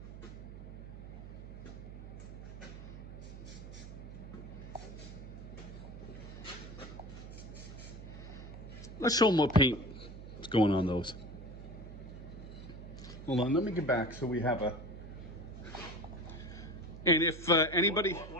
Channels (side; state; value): right; noise; hum, 12 dB below the sound